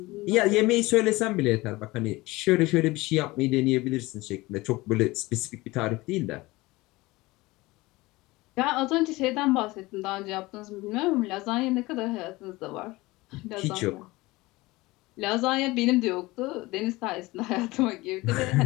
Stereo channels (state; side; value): quieter; right; 20.9 dB